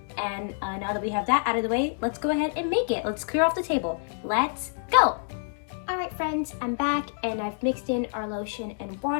And now that we have that out of the way, let's go ahead and make it. Let's clear off the table. Let's go. All right, friends, I'm back and I've mixed in our lotion and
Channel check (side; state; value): right; silent; digital silence